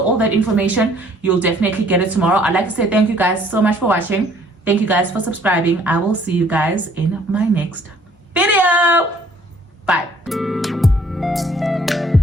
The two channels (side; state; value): both; normal; correlation 0.59